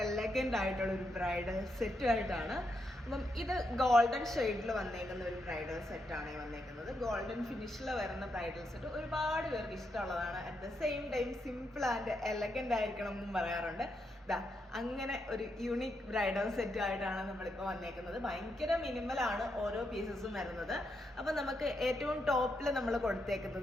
എലഗന്റ് ആയിട്ടുള്ള ഒരു ബ്രൈഡൽ സെറ്റുമായിട്ടാണ്. അപ്പം ഇത് ഗോൾഡൻ ഷെയ്ഡിൽ വന്നേക്കുന്ന ഒരു ബ്രൈഡൽ സെറ്റാണ് വന്നേക്കുന്നത്. ഗോൾഡൻ ഫിനിഷിൽ വരുന്ന ബ്രൈഡൽ സെറ്റ് ഒരുപാട് പേർക്ക് ഇഷ്ടമുള്ളതാണ്. At the same time simple and elegant ആയിരിക്കണം എന്നും പറയാറുണ്ട്. അങ്ങനെ ഒരു യൂണിക് ബ്രൈഡൽ സെറ്റ് ആയിട്ടാണ് നമ്മളിപ്പോൾ വന്നേക്കുന്നത്. ഭയങ്കര മിനിമലാണ് ഓരോ പീസസും വരുന്നത്. അപ്പം നമുക്ക് ഏറ്റവും ടോപ്പിൽ നമ്മൾ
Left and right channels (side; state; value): both; normal; correlation 0.82